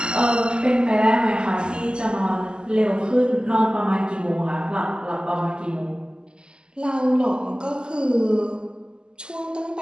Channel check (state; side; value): late; left; 0.047 ms